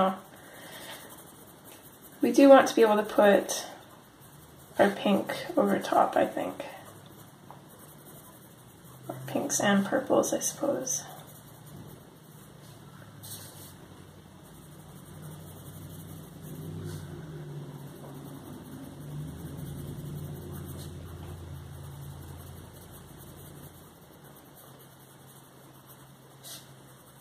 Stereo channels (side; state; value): both; identical; correlation 1.00